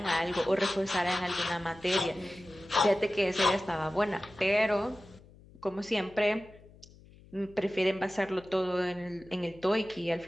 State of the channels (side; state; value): left; noise; hum, 23 dB below the sound